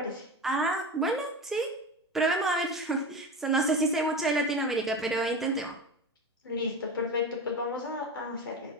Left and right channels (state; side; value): normal; both; correlation 0.26